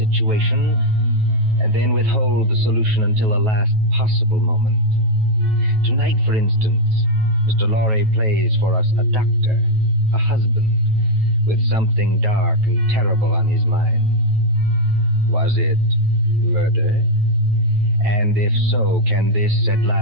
and then withhold the solution until the last possible moment. Tonight, for instance, Mr. Lorre plays for us a doctor, a husband, with something dark and terrible on his mind. Was it murder? And if so, can this at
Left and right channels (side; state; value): left; late; 9.2 ms